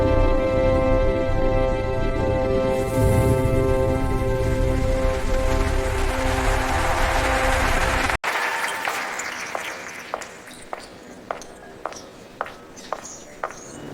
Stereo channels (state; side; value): identical; both; correlation 1.00